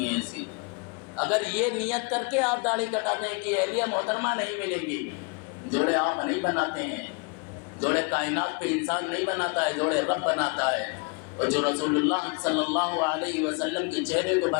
ہیں ایسی۔ اگر یہ نیت کر کے آپ داڑھی کٹاتے ہیں کہ اہلیہ محترمہ نہیں ملے گی، جوڑے آپ نہیں بناتے ہیں، جوڑے کائنات پہ انسان نہیں بناتا ہے، جوڑے رب بناتا ہے، اور جو رسول اللہ صلی اللہ علیہ وسلم کے چہرے کو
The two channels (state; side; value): quieter; right; 32.5 dB